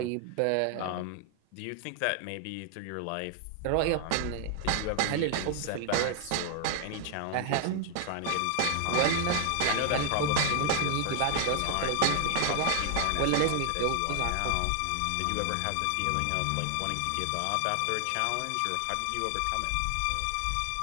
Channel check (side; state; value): both; different; correlation 0.00